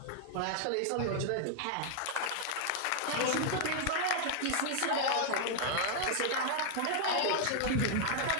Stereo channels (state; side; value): different; both; correlation 0.00